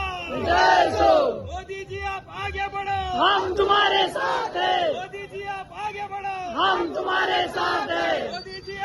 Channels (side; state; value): both; identical; correlation 1.00